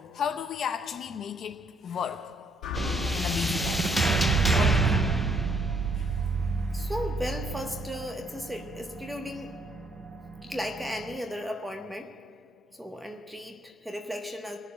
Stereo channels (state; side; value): normal; both; correlation 0.69